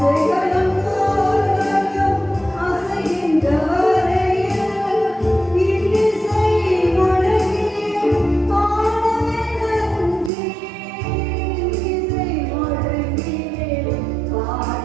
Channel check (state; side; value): drops out; left; at 10.3 s